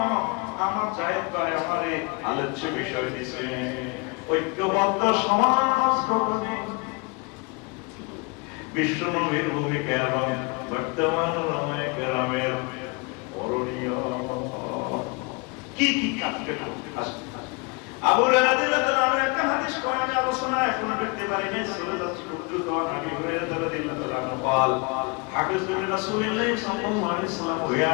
আমার জায়েদ ভাই আমারে আলোচ্য বিষয় দিছে ঐক্যবদ্ধ সমাজ গঠনে বিশ্ব নবীর ভূমিকা এবং বর্তমান ওলামায়ে কেরামের করণীয় কি কাজ করতে আসে আবু হুরায়রা রাদিয়াল্লাহু আনহু একটা হাদিস কোরআনে আলোচনা এখনো দেখতে পারি নাই চলে যাচ্ছে উদ্দুত নবী হুরায়রা রাদিয়াল্লাহু আনহু قال حدث رسول الله صلى الله عليه وسلم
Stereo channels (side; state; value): right; quieter; 30.0 dB